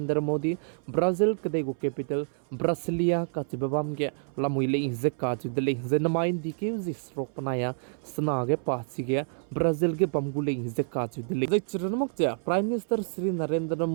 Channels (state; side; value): silent; left; 59 dB below the other